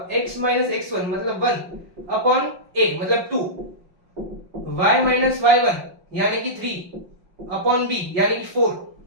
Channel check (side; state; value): left; late; 5.6 ms